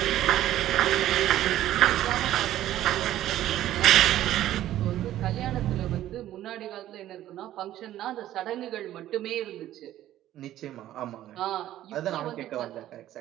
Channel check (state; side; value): quieter; left; 13.2 dB